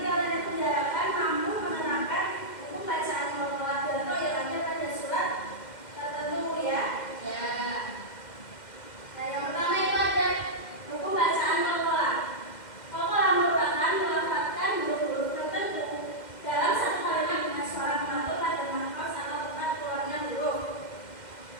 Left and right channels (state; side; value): late; right; 2.1 ms